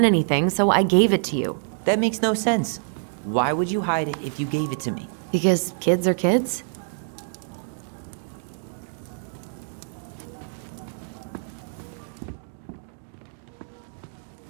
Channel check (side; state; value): left; silent; digital silence